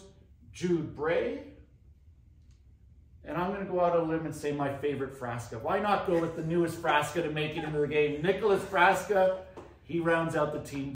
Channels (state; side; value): identical; both; correlation 1.00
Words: Jude Bray. And I'm going to go out on a limb and say my favorite Frasca. Why not go with the newest Frasca to make it into the game? Nicholas Frasca, he rounds out the Team